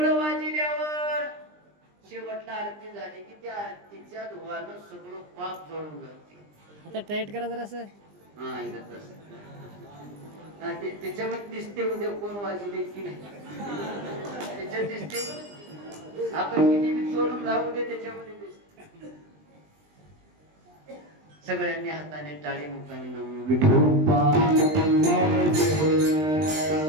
वाजल्यावर शेवटला आरती झाली की त्या आरतीच्या धुवानं सगळं पाप जळून जाते. आता टाईट करा जरा असं. हा इथं तसं. त्याच्यामध्ये दिसते उद्या कोण वाजले की नाही, त्याच्यात दिसते. आपण किती बी चोरून राहू दे, त्याच्यामध्ये दिसते. सगळ्यांनी हाताने टाळी, मुखाने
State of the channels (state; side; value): late; left; 20 ms